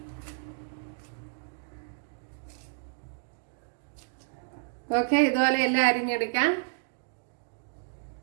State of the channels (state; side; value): silent; left; digital silence